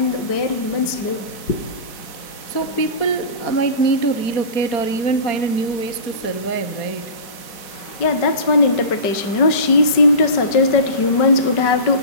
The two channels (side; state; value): right; late; 5.2 ms